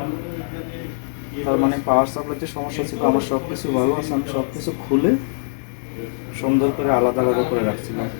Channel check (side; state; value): right; silent; digital silence